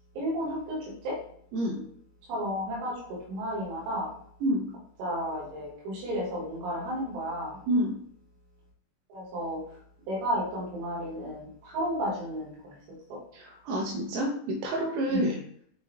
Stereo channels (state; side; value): late; left; 21 ms